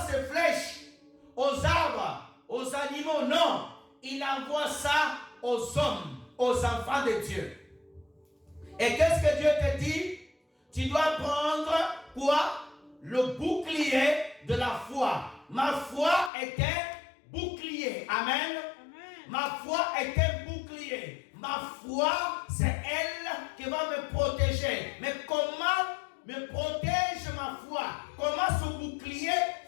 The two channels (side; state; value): right; drops out; at 16.3 s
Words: ces flèches aux arbres, aux animaux, non. Il envoie ça aux hommes, aux enfants de Dieu. Et qu'est-ce que Dieu te dit? Tu dois prendre quoi? Le bouclier de la foi. Ma foi est un bouclier. Amen. Ma foi est un bouclier. Ma foi, c'est elle qui va me protéger. Mais comment me protège ma foi? Comment ce bouclier